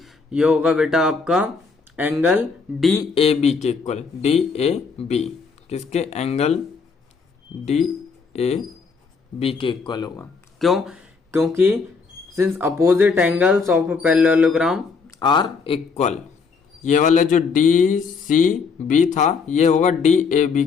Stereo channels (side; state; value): right; quieter; 5.0 dB